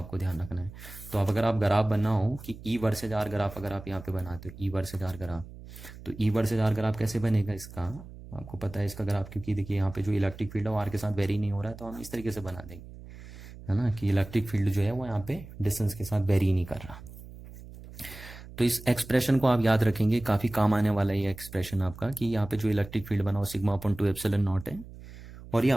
ध्यान रखना है। तो अब अगर आप ग्राफ बनना हो कि ई वर्सेज आर ग्राफ अगर आप यहाँ पे बनाते हो, ई वर्सेज आर ग्राफ, तो ई वर्सेज आर ग्राफ कैसे बनेगा इसका, आपको पता है इसका ग्राफ, क्योंकि देखिए यहाँ पे जो इलेक्ट्रिक फील्ड है वो आर के साथ वेरी नहीं हो रहा है, तो हम इस तरीके से बना देंगे, है ना, कि इलेक्ट्रिक फील्ड जो है वो यहाँ पे डिस्टेंस के साथ वेरी नहीं कर रहा। तो इस एक्सप्रेशन को आप याद रखेंगे, काफ़ी काम आने वाला है ये एक्सप्रेशन आपका, कि यहाँ पे जो इलेक्ट्रिक फील्ड बना वो सिग्मा अपॉन 2 एप्सिलन नॉट है, और ये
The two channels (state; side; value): noise; right; hum, 16 dB below the sound